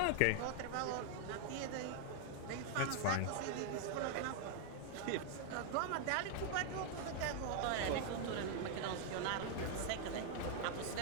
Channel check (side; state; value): both; different; correlation 0.00